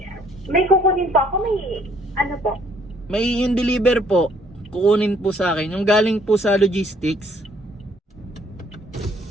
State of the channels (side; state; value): both; normal; correlation 0.63